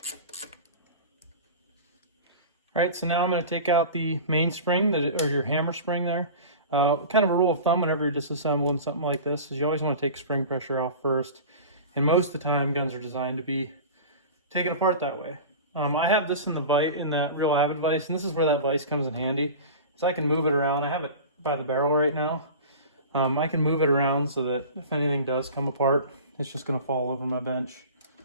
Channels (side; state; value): both; inverted; correlation -0.35